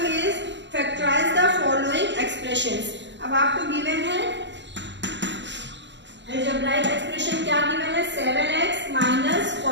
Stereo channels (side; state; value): left; late; 0.52 ms